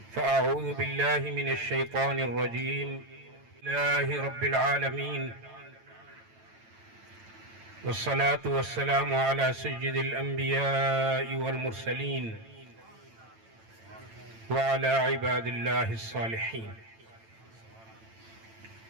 فأعوذ بالله من الشيطان الرجيم. لله رب العالمين، والصلاة والسلام على سيد الأنبياء والمرسلين وعلى عباد الله الصالحين.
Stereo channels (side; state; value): left; late; 9.0 ms